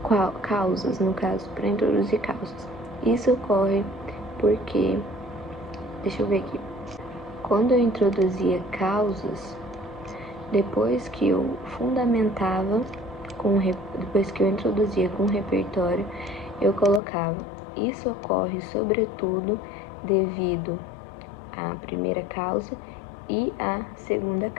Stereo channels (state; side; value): drops out; right; at 17.0 s